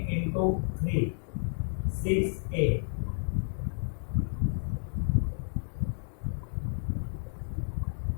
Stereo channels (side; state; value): right; silent; 57 dB below the other